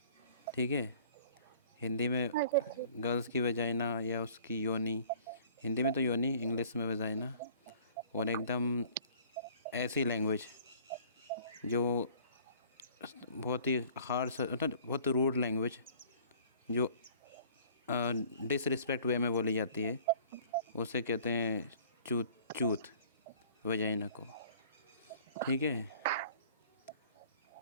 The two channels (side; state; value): both; inverted; correlation -0.51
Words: ठीक है। हिंदी में अच्छा ठीक। गर्ल्स की वेजाइना या उसकी योनी। हिंदी में तो योनी, इंग्लिश में वेजाइना। और एकदम ऐसी लैंग्वेज जो बहुत ही हार्श, मतलब बहुत रूड लैंग्वेज, जो डिसरिस्पेक्ट वे में बोली जाती है, उसे कहते हैं चूत। चूत वेजाइना को, ठीक है।